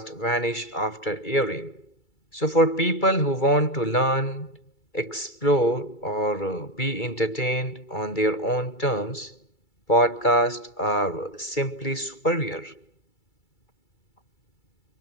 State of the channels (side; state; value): right; late; 2.3 ms